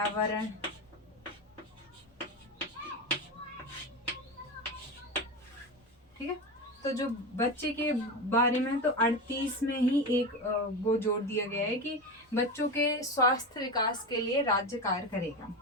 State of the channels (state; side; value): normal; both; correlation 0.20